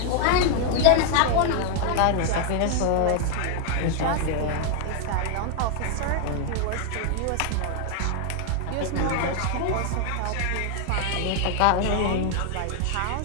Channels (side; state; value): both; different; correlation 0.00